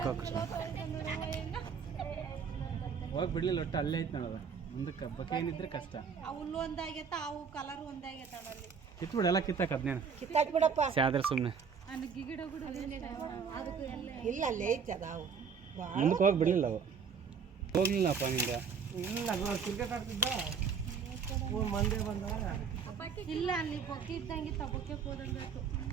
ಹೋಗಿ ಕೃಷ್ಣ ಹೋಗಿ ಬಿಡ್ಲಿಲ್ಲ ಒಟ್ಟು ಅಲ್ಲೇ ಐತೆ ನೋಡೋದು ಮುಂದಕ್ಕೆ ಬಕ್ಕೆ ಏನಿದ್ರೆ ಕಷ್ಟ ಹುಲ್ಲು ಒಂದಾಗೈತ ಅವು ಕಲರ್ ಒಂದಾಗೈತ ಅಲ್ಲಿ ಕಿತ್ಬಿಡು ಎಲ್ಲ ಕಿತ್ತಾಕ ಅದ್ನೇನು ಕಿತ್ತಾಕ್ ಬಿಡಪ್ಪ ಸ್ಯಾದ್ರೆ ಸುಮ್ಮನೆ ಇಲ್ಲ ಅಲ್ಲೇ ಐತೆ ಅದಾವು ಮುಂದಕ್ಕೆ ಹೋಗಿ ಬಿಡಲಿಲ್ಲ ಅವು ಹೋಗ್ಲಿಲ್ಲಪ್ಪ ನಿಂದ ಇಲ್ಲ ಕ್ರಿಕೆಟ್ ಆಡ್ತಿದ್ದ ಮಂದೆ ಬಂದಾಗ ಇಲ್ಲ ಅಲ್ಲಿ ಬೊಕ್ಕೆ ಇದ್ದಂಗೆ ಬೊಕ್ಕೆ ಹೋದಂಗಾಯ್ತು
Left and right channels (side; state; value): left; quieter; 6.2 dB